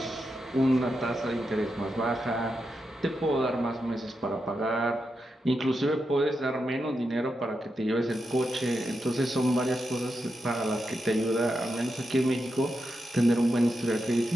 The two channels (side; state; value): both; normal; correlation 0.86